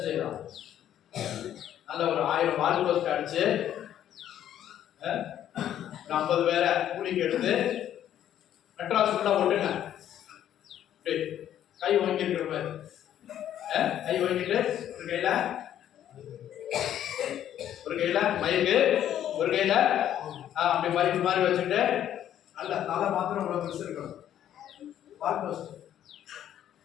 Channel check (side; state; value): right; quieter; 10.9 dB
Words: செய்யலாம்? நல்ல ஒரு 1000 வால் போஸ்ட் அடிச்சு 50 பேரை கூலிக்கு எடுத்து மெட்ராஸ்குள்ள ஓட்டுங்க. கை வாங்கிருக்கிற மாதிரி கை வாங்கிட்டு ஒரு கையில மைக்கு, ஒரு கையில அப்படி மைக்கு மாதிரி வச்சுட்டு நல்ல தலை மாத்திரம் உள்ள பெருசு இருக்கணும். வால் போஸ்ட்